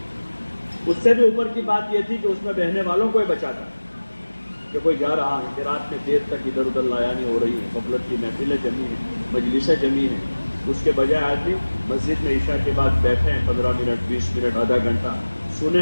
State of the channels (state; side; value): inverted; both; correlation -1.00